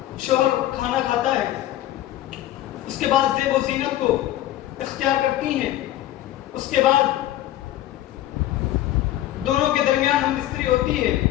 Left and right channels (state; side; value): quieter; right; 14.0 dB